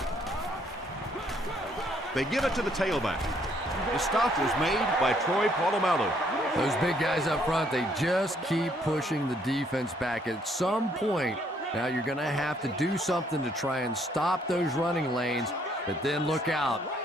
They give it to the tailback. The stop was made by Troy Polamalu. Those big guys up front, they just keep pushing the defense back. At some point, now you're going to have to do something to try and stop those running lanes, but then look out.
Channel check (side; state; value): both; normal; correlation 0.67